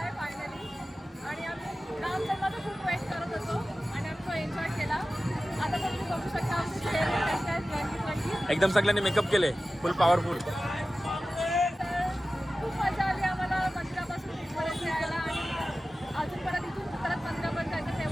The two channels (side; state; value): both; normal; correlation 0.95